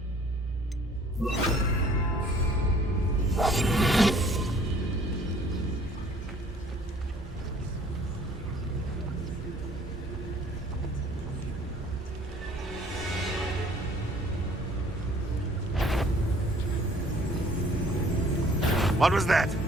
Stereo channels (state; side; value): normal; both; correlation 0.56